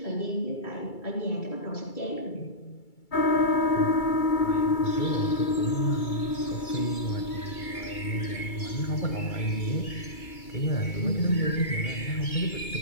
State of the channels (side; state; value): right; late; 2.3 ms